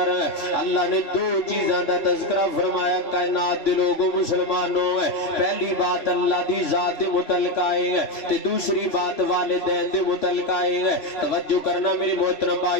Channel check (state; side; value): late; right; 3.0 ms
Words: اللہ نے دو چیزاں دا تذکرہ فرمایا کائنات دے لوگوں مسلمانوں. پہلی بات اللہ دی ذات دے متعلق آئے تے دوسری بات والدین دے متعلق آئے. توجہ کرنا میرے محترم